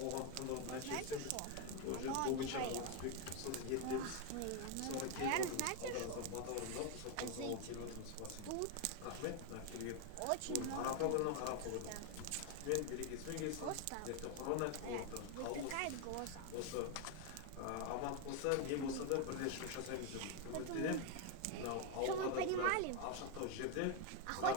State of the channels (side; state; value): both; different; correlation 0.01